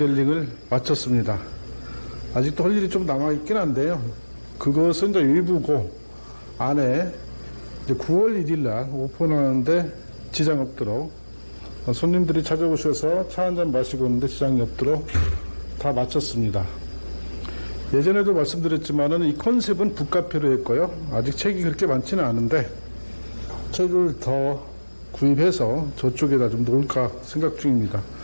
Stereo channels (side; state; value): both; inverted; correlation -1.00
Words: 마쳤습니다. 아직도 할 일이 좀 남아있긴 한데요. 그것은 이제 일부고 안에 이제 9월 1일 날 오픈하는데 지장 없도록 손님들이 찾아오셔서 차 한잔 마시고 있는데 지장이 없도록 다 마쳤습니다. 예전에도 말씀드렸지만은 이 컨셉은 북카페로 했고요. 아직 책이 그렇게 많지는 않은데 책을 더 구입해서 저쪽에다 좀 놓을까 생각 중입니다.